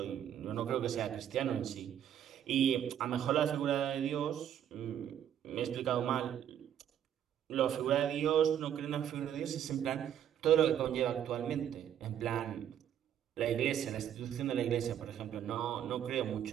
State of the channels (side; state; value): left; quieter; 9.9 dB